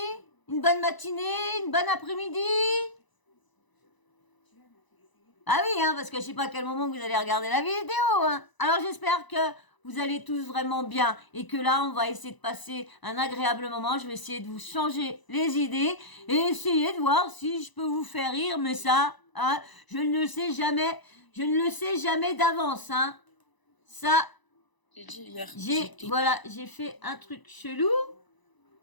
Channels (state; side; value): late; right; 1.0 ms